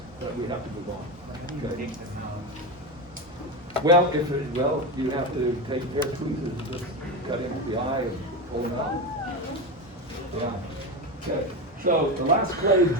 but we have to move on. Okay. Well, you have to take a pair of tweezers and just cut into the eye and pull them out. Yeah. Okay. So the last clade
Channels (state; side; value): normal; both; correlation 0.17